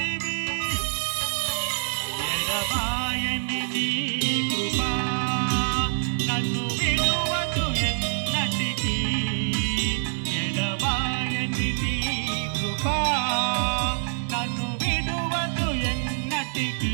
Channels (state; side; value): silent; left; digital silence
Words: ఎడబాయని నీ కృపా నన్ను విడువదు ఎన్నటికీ ఎడబాయని నీ కృపా నన్ను విడువదు ఎన్నటికీ